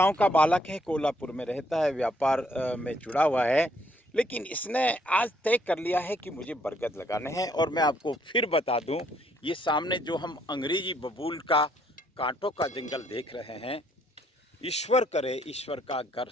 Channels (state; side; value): normal; both; correlation 0.68